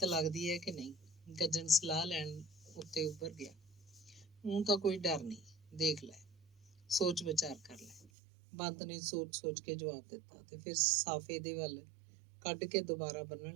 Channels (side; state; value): left; drops out; at 8.1 s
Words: ਲੱਗਦੀ ਹੈ ਕਿ ਨਹੀਂ? ਗੱਜਣ ਸਲਾਹ ਲੈਣ ਉੱਤੇ ਉੱਭਰ ਗਿਆ। ਊਂ ਤਾਂ ਕੋਈ ਡਰ ਨਹੀਂ, ਦੇਖ ਲੈ, ਸੋਚ ਵਿਚਾਰ ਕਰ ਲੈ। ਬੰਤ ਨੇ ਸੋਚ ਕੇ ਜਵਾਬ ਦਿੱਤਾ ਤੇ ਫਿਰ ਸਾਫੇ ਦੇ ਵੱਲ ਕੱਢ ਕੇ ਦੁਬਾਰਾ